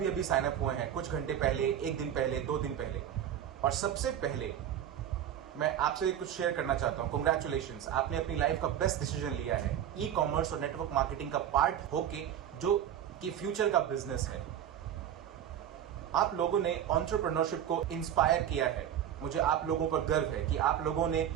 अभी साइन अप हुए हैं, कुछ घंटे पहले, एक दिन पहले, 2 दिन पहले। और सबसे पहले मैं आपसे कुछ शेयर करना चाहता हूं। कांग्रेचुलेशंस, आपने अपनी लाइफ का बेस्ट डिसीजन लिया है, ई कॉमर्स और नेटवर्क मार्केटिंग का पार्ट होके, जो कि फ्यूचर का बिजनेस है। आप लोगों ने एंटरप्रेन्योरशिप को इंस्पायर किया है। मुझे आप लोगों पर गर्व है कि आप लोगों ने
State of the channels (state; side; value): quieter; left; 10.1 dB